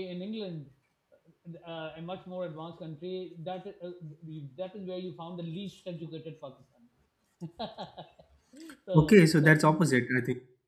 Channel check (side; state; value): both; identical; correlation 1.00